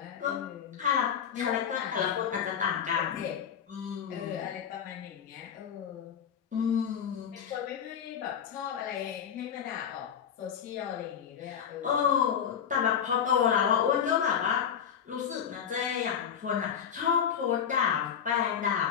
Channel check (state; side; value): quieter; right; 8.2 dB